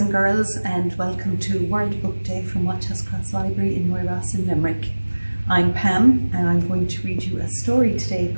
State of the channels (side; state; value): both; inverted; correlation -1.00